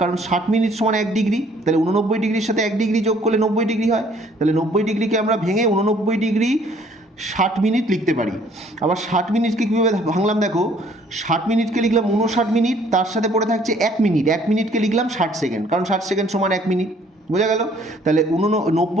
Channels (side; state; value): both; normal; correlation 0.60